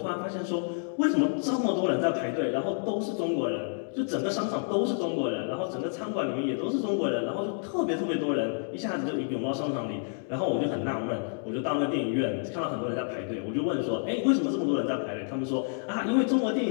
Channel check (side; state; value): right; silent; 58 dB below the other